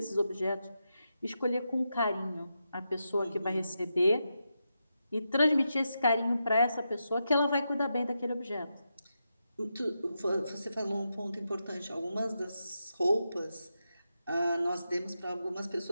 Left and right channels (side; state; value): both; inverted; correlation -0.87